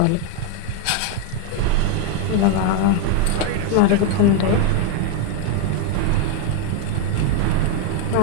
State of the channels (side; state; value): both; different; correlation 0.01